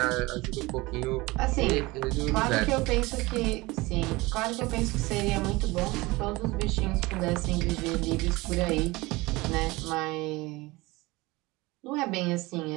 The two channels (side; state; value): left; quieter; 21.9 dB